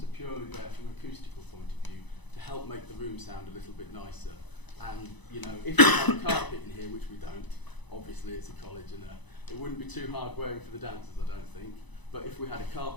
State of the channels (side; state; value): right; late; 1.0 ms